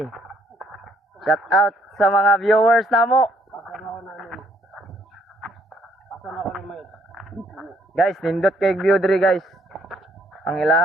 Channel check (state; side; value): normal; both; correlation 0.66